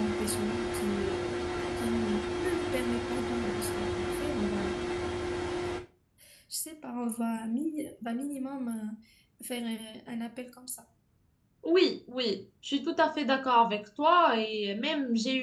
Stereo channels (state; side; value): identical; both; correlation 1.00